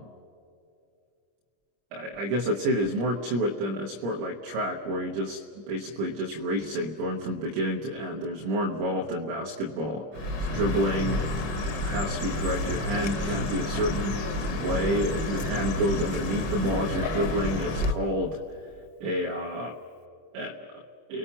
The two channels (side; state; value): left; late; 25 ms